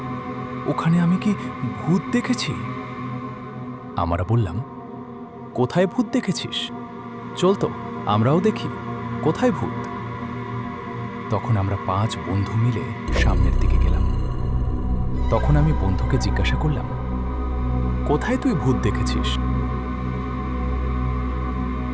ওখানে আমি কি ভূত দেখেছি? আমরা বললাম, কোথায় ভূত দেখেছিস? চল তো আমরাও দেখি, কোথায় ভূত। তখন আমরা ৫ বন্ধু মিলে সামনের দিকে গেলাম। তখন আমি বন্ধুকে জিজ্ঞাসা করলাম, কোথায় তুই ভূত দেখেছিস?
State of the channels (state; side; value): identical; both; correlation 1.00